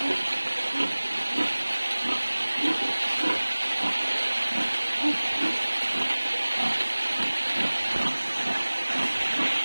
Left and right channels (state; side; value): inverted; both; correlation -1.00